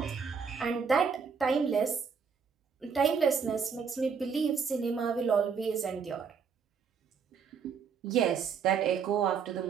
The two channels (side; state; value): left; quieter; 6.2 dB